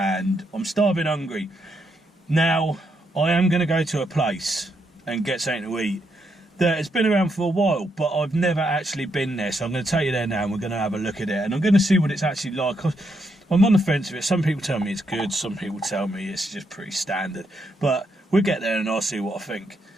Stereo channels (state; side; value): normal; both; correlation 0.78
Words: I'm starving hungry. Now, I am going to go to a place and get something to eat that has been around for a while, but I've never actually been there, so I'm going to take you there now and we're going to have a look at it and I'm going to see what it's actually like. I'm on the fence with it. Some people tell me it's good, some people tell me it's just pretty standard, but we'll get there and I'll see what I think.